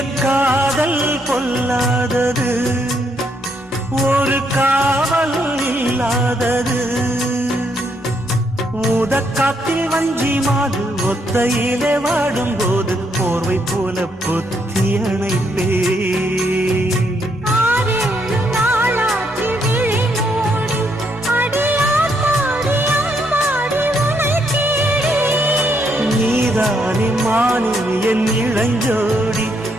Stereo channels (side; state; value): both; normal; correlation 0.74